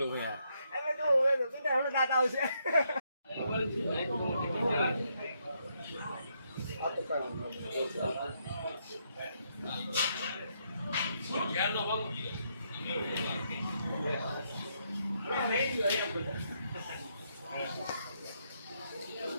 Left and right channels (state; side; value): inverted; both; correlation -0.76